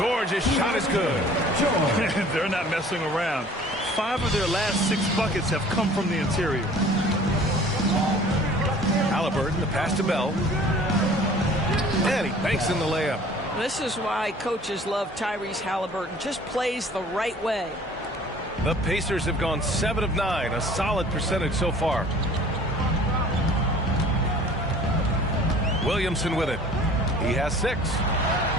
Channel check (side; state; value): both; normal; correlation 0.49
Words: shot is good. They're not messing around. 5 of their last 6 buckets have come from the interior. Halliburton, the pass to Bell. And he banks in the layup. This is why coaches love Tyrese Halliburton. Just plays the right way. The Pacers have gone 7 of 9, a solid percentage so far. Williamson with it. He has 6.